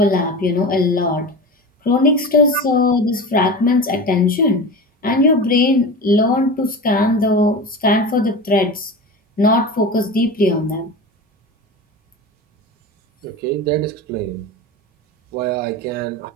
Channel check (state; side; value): normal; both; correlation 0.29